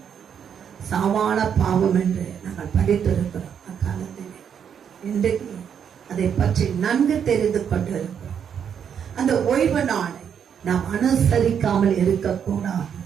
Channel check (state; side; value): quieter; left; 8.0 dB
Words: சாவான பாவம் என்று நாங்கள் படித்திருக்கிறோம் அக்காலத்திலே. இன்றைக்கு அதை பற்றி நன்கு தெரிந்து கொண்டிருக்கிறோம். அந்த ஓய்வு நாளை நாம் அனுசரிக்காமல் இருக்கக்கூடாது.